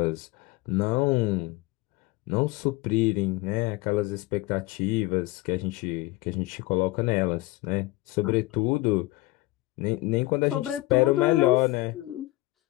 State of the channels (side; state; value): right; quieter; 19.7 dB